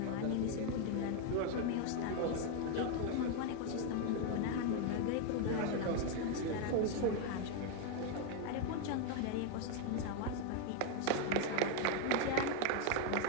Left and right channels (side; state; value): both; different; correlation 0.01